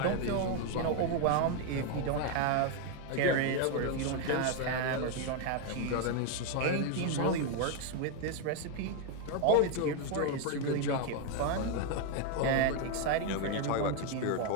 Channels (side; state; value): both; different; correlation 0.01